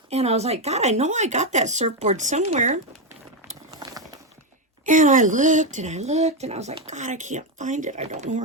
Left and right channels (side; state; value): both; normal; correlation 0.06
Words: And I was like, God, I know I got that surfboard somewhere. And I looked and I looked and I was like, God, I can't find it. I don't know